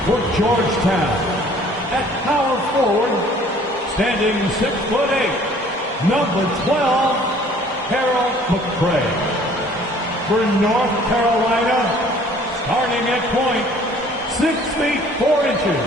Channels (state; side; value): normal; both; correlation 0.54